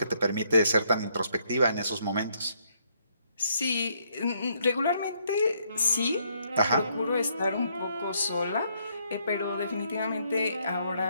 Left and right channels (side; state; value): both; inverted; correlation -0.71